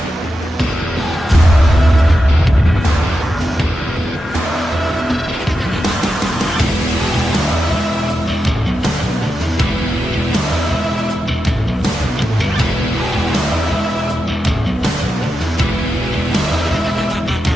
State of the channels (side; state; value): both; normal; correlation 0.88